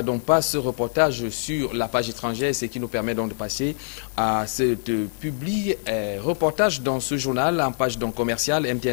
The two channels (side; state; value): right; silent; digital silence